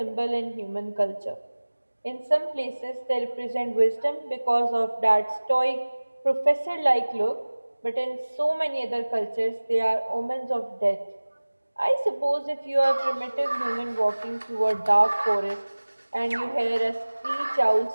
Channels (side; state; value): both; inverted; correlation -1.00